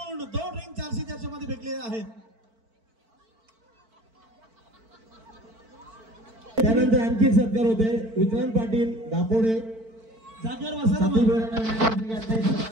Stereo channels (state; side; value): late; left; 4.5 ms